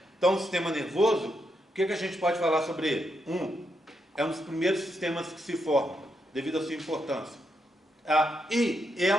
Então, o sistema nervoso, o que a gente pode falar sobre ele? É um dos primeiros sistemas que se formam, devido à sua importância. E é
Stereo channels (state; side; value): normal; both; correlation 0.81